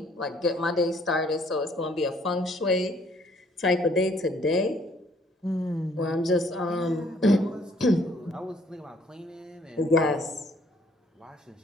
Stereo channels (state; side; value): normal; both; correlation 0.63